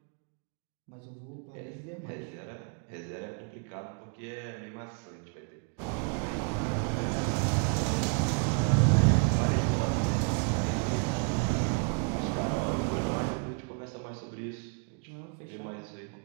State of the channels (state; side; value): quieter; left; 39.4 dB